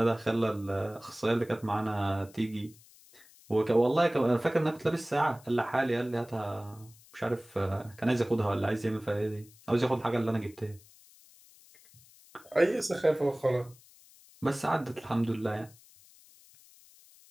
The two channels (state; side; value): noise; left; hiss, 25 dB below the sound